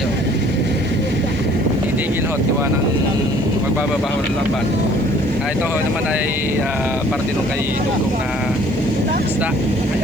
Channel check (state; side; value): noise; left; hiss, 28 dB below the sound